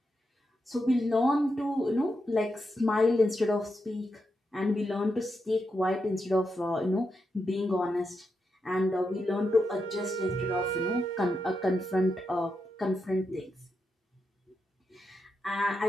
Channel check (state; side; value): normal; both; correlation 0.85